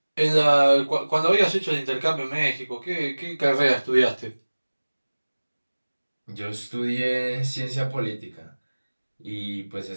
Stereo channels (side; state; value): both; inverted; correlation -1.00